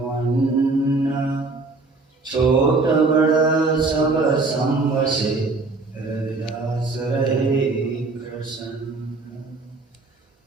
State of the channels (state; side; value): quieter; left; 3.6 dB